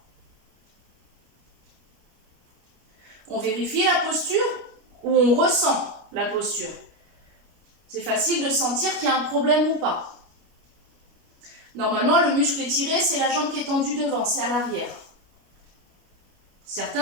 On vérifie la posture ou on ressent la posture. C'est facile de sentir qu'il y a un problème ou pas. Normalement, le muscle étiré, c'est la jambe qui est tendue devant, c'est à l'arrière.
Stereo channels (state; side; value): late; left; 29 ms